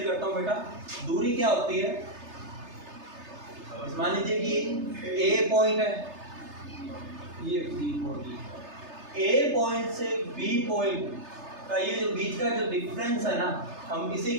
करता हूँ बेटा, दूरी क्या होती है। मान लीजिए कि ए पॉइंट है, ये बी पॉइंट, ए पॉइंट से बी पॉइंट का ये जो बीच का जो डिफरेंस है ना, हम इसे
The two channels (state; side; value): late; left; 3.3 ms